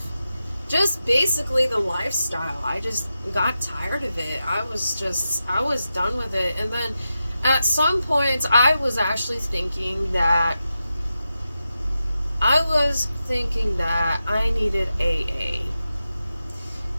just basically the lifestyle. I just got tired of it. I was done with it. And then at some points, I was actually thinking that I needed AA.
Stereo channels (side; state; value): both; inverted; correlation -0.90